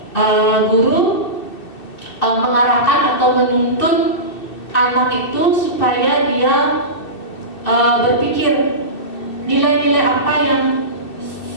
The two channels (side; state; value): right; late; 2.6 ms